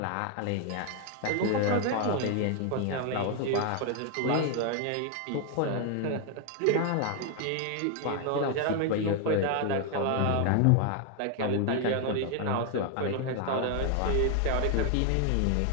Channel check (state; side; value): different; both; correlation 0.00